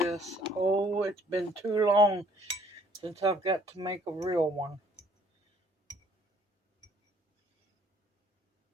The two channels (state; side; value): normal; both; correlation 0.60